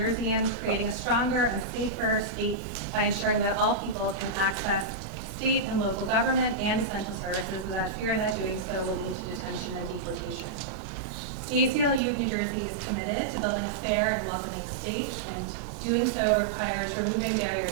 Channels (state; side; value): drops out; left; at 12.0 s